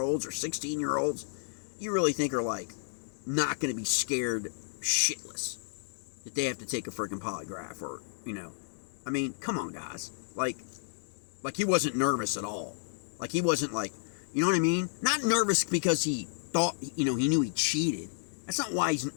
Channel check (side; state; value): right; silent; digital silence